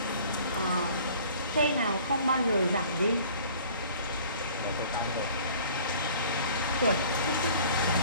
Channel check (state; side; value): inverted; both; correlation -0.50